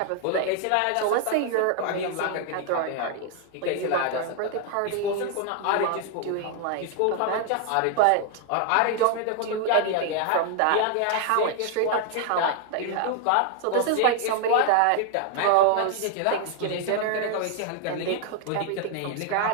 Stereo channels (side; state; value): both; different; correlation 0.00